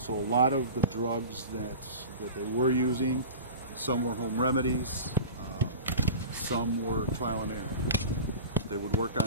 a lot of the drugs that they were using, some were home remedies, some were trial and error. They would work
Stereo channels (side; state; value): both; inverted; correlation -0.34